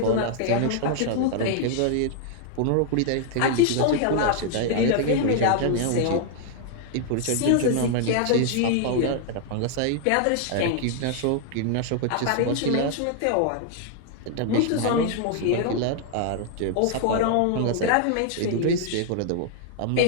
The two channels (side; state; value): both; different; correlation -0.01